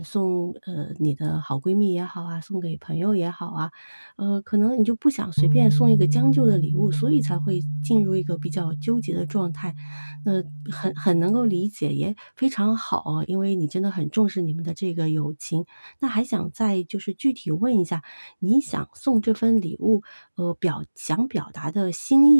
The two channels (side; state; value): both; inverted; correlation -1.00